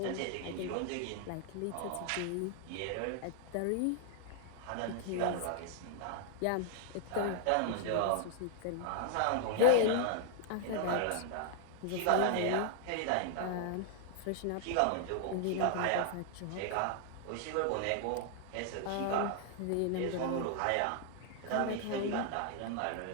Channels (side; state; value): both; different; correlation 0.00